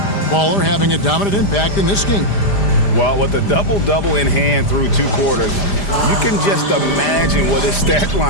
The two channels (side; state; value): right; late; 5.0 ms